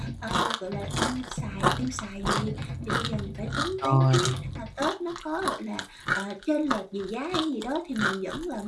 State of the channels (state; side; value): identical; both; correlation 1.00